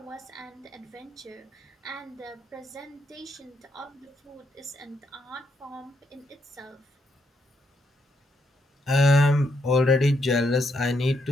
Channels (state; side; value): normal; both; correlation 0.77